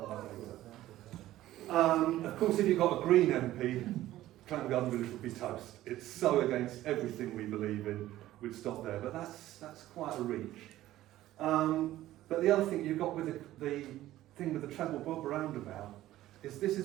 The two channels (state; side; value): quieter; left; 14.7 dB